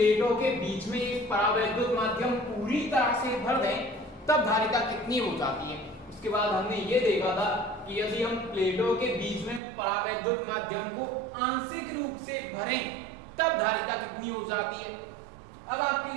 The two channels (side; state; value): left; drops out; at 9.6 s